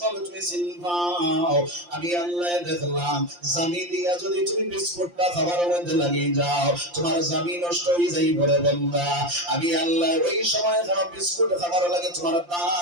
তুমি চিনবাও। আমি আল্লাহ দেখলাম জামি দিয়া যদি তুমি বিস্কুটটা খাবার মধ্যে লাগিয়ে যাও তোমার জামি নষ্ট হয়ে যাই বলে বান্দা। আমি আল্লাহ ওই সময় খারাপ বিস্কুট খাবার লাগে তোমার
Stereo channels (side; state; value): left; late; 5.7 ms